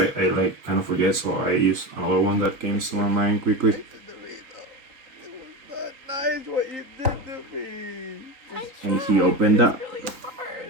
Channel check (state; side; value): late; left; 3.8 ms